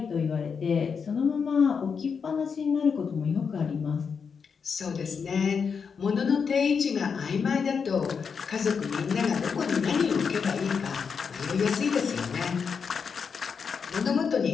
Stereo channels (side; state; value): right; quieter; 6.0 dB